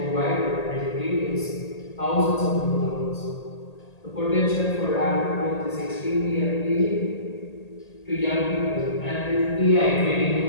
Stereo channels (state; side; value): late; right; 1.8 ms